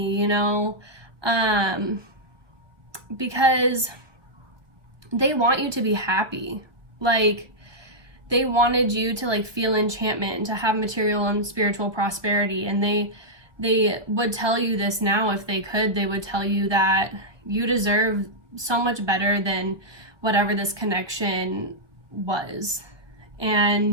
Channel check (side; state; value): left; late; 1.1 ms